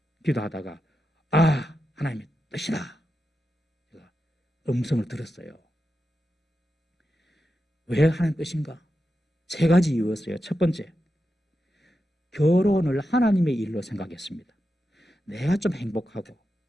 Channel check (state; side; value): normal; both; correlation 0.89